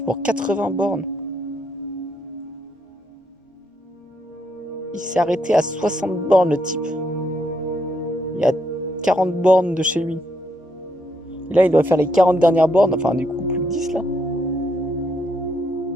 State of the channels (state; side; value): normal; both; correlation 0.76